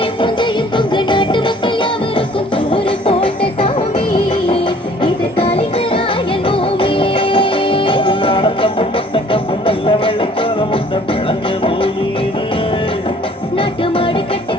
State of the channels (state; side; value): normal; both; correlation 0.54